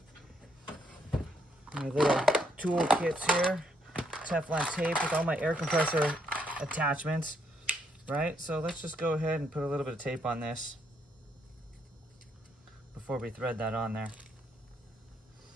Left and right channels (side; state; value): both; normal; correlation 0.73